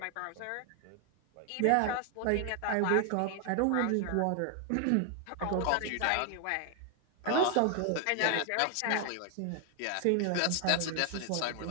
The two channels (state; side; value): different; both; correlation 0.00